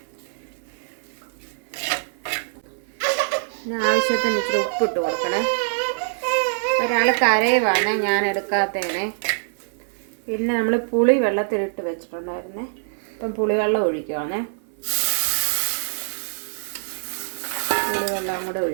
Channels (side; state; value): left; silent; 56 dB below the other